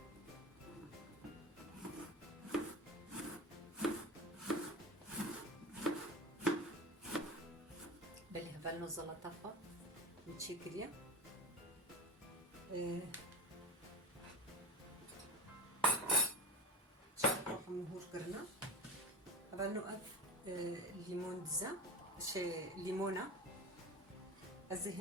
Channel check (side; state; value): both; normal; correlation 0.26